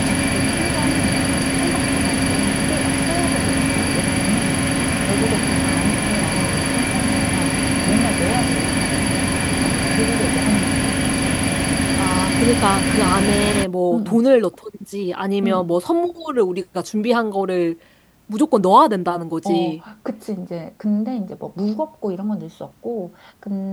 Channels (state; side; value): identical; both; correlation 1.00